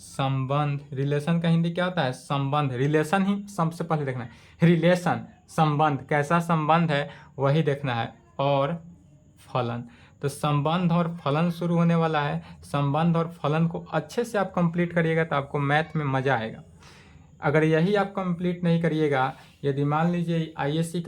रिलेशन का हिंदी क्या होता है, संबंध। रिलेशन ही सबसे पहले देखना है, रिलेशन संबंध, कैसा संबंध है वही देखना है। और फलन, तो संबंध और फलन शुरू होने वाला है। संबंध और फलन को अच्छे से आप कंप्लीट करिएगा तो आपको मैथ में मजा आएगा। अगर यही आप कंप्लीट नहीं करिएगा, यदि मान लीजिए आईएससी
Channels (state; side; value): identical; both; correlation 1.00